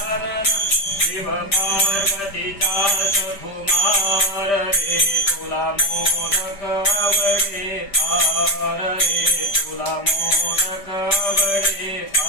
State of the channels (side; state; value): right; late; 5.1 ms